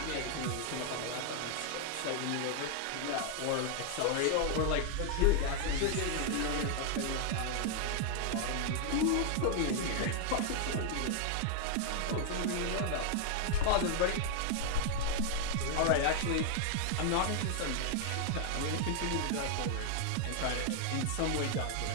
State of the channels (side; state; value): both; different; correlation 0.00